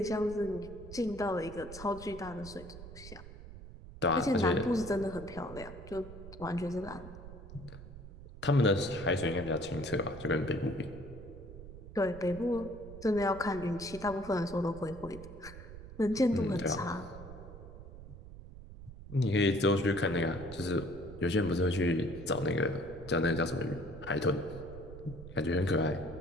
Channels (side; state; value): right; noise; rumble, 14 dB below the sound